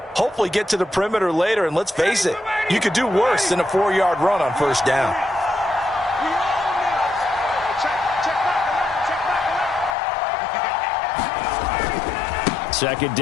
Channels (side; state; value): right; drops out; at 10.0 s